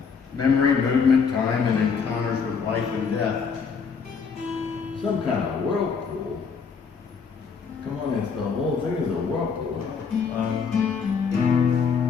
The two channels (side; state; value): right; quieter; 5.8 dB